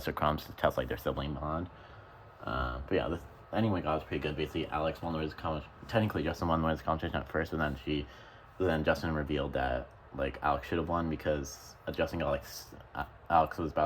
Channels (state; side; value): identical; both; correlation 1.00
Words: Crumbs to test like their sibling bond. But yeah, this ending we got was pretty good. Basically, Alex won the Wiz competition. Technically, Justin won the Wiz competition at first, but then Justin revealed that like Alex should have won because Justin got like Alex was